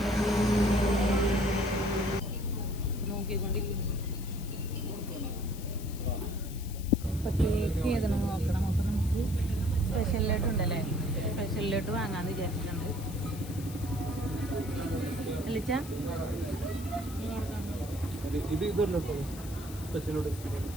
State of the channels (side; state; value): left; noise; hiss, 16 dB below the sound